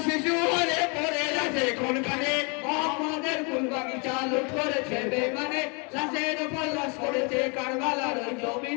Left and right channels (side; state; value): right; quieter; 33.4 dB